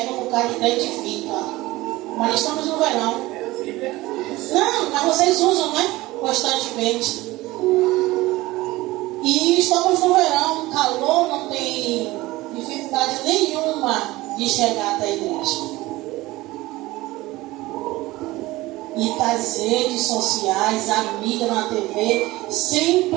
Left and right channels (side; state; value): left; quieter; 19.1 dB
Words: o cara identifica. Mas estamos no verão. Não, mas vocês usam, né? Constantemente. E estamos no verão, calor, não tem dificuldade nenhuma de chegar até a igreja. E das redes sociais, a mídia na TV,